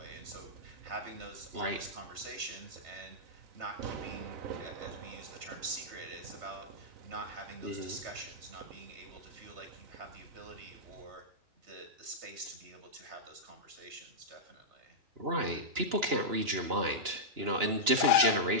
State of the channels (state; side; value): late; left; 2.9 ms